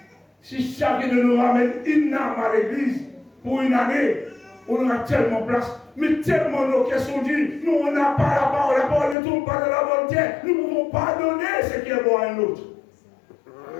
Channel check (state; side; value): drops out; right; at 9.2 s